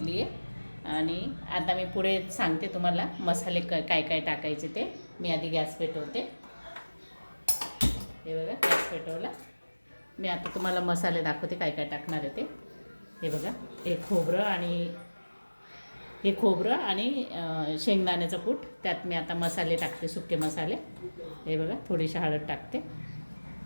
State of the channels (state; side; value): inverted; both; correlation -1.00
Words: आहे. आणि आता मी पुढे सांगते तुम्हाला मसाले काय काय टाकायचे ते. मी आधी गॅस पेटवते. हे बघा, गॅस पेटवला. मी आता तुम्हाला मसाले दाखवते काय काय टाकणार आहे ते. हे बघा, हे खोबरं आणि शेंगदाण्याचं कूट. त्यात मी आता मसाले टाकते, सुके मसाले. हे बघा, थोडीशी हळद टाकते,